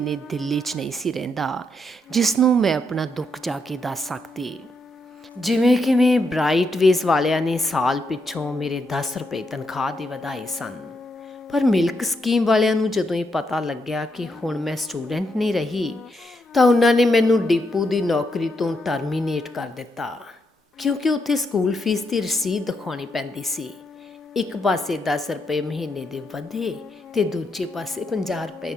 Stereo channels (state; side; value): normal; both; correlation 0.80